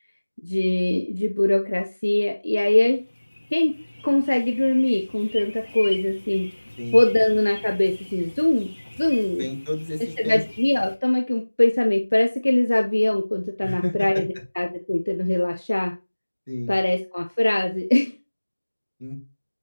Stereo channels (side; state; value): both; inverted; correlation -1.00